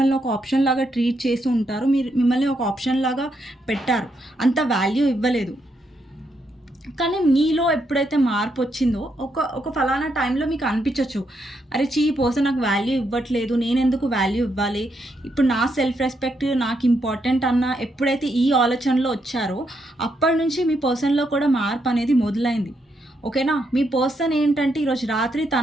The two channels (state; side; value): normal; both; correlation 0.79